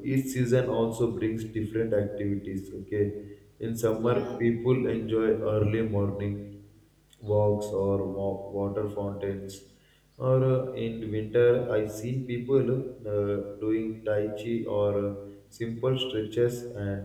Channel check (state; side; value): identical; both; correlation 1.00